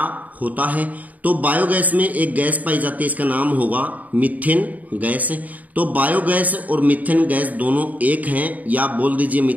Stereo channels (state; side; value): late; left; 0.075 ms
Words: होता है। तो बायोगैस में एक गैस पाई जाती है, इसका नाम होगा मीथेन गैस। तो बायोगैस और मीथेन गैस दोनों एक हैं, या बोल दीजिए